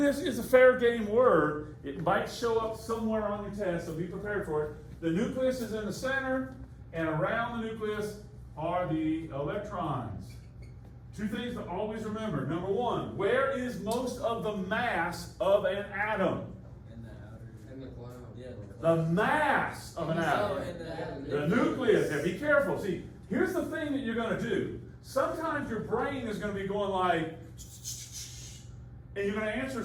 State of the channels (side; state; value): both; identical; correlation 1.00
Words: is a fair game word. It might show up somewhere on your test, so be prepared for it. The nucleus is in the center, and around the nucleus are the electrons. Two things to always remember. Number one, where is most of the mass of an atom? In the outer. In the cloud. Yeah, the mass of an atom. The nucleus. Now, be careful. See, here's the thing that you're going to do. Sometimes your brain is going to be going like, and you're going to answer